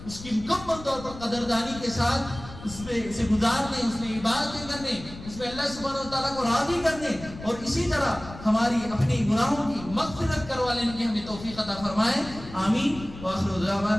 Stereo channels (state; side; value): noise; left; rumble, 14 dB below the sound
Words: اس کی مکمل طور پر قدردانی کے ساتھ اس میں سے گزارنے, اس میں عبادتیں کرنے, اس میں اللہ سبحانہ و تعالیٰ کو راضی کرنے اور اسی طرح ہماری اپنی گناہوں کی مغفرت کروا لینے کی ہمیں توفیق عطا فرمائے. آمین. وآخر